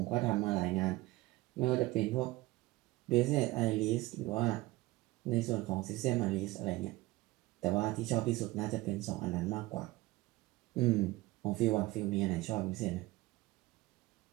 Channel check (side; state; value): left; quieter; 19.4 dB